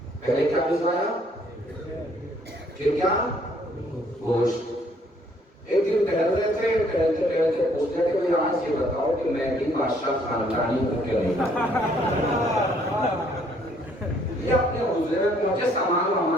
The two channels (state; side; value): normal; both; correlation 0.64